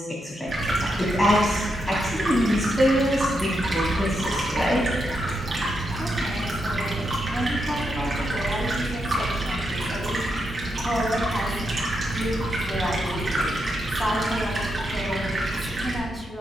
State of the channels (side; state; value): both; normal; correlation 0.82